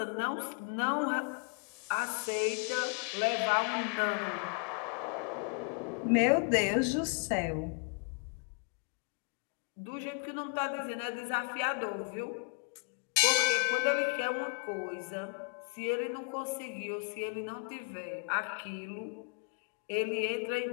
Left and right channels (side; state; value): right; quieter; 39.2 dB